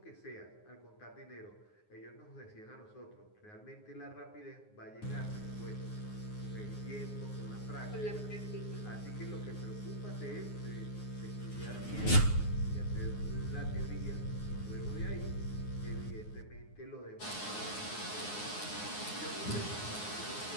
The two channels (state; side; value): late; right; 9.5 ms